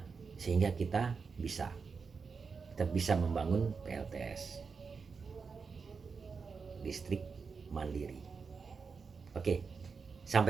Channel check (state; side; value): quieter; left; 5.2 dB